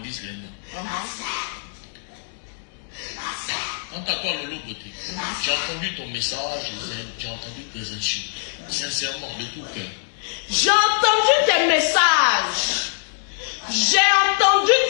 les noms. Quant à toi, Lolo Beauté, j'ai entendu ton message, j'ai entendu tes insultes. Sincèrement, de tout cœur. J'ai entendu tes messages. J'ai entendu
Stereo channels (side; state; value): right; silent; digital silence